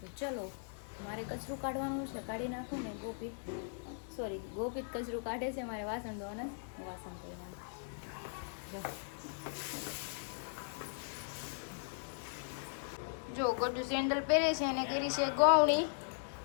ચલો, મારે કચરું કાઢવાનું છે, કાઢી નાખું ને ગોપિત કચરું કાઢે છે, મારે વાસણ ધોવાના છે, વાસણ ધોઈ નાખું। જો ગોડું સેન્ડલ પહેરે છે અને કરી છે ગૌણી,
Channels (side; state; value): right; silent; digital silence